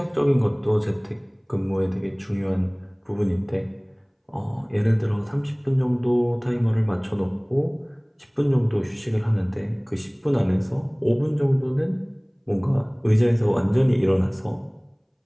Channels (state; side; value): identical; both; correlation 1.00